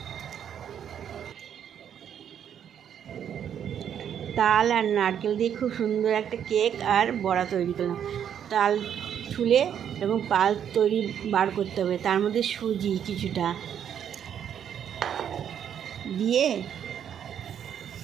তাল আর নারকেল দিয়ে খুব সুন্দর একটা কেক আর বড়া তৈরি করলাম। তাল ছুলে এরকম পাল তৈরি বার করতে হবে, তার মধ্যে সুজি কিছুটা দিয়ে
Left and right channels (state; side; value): quieter; left; 9.0 dB